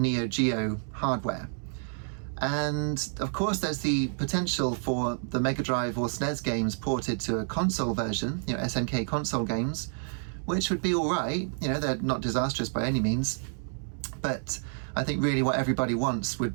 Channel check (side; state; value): left; silent; 58 dB below the other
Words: Geo hardware. And of course there's the potential for the Mega Drive or SNES games ported to a console version, SNK console games, which would be alright, they're not disastrous by any means, but I think really what everybody wants